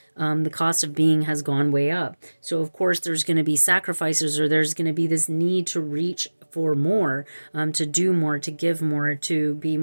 the cost of being has gone way up. So of course there's going to be sacrifices, or there's going to be this need to reach for more, to do more, to give more, to be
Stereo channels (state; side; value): inverted; both; correlation -1.00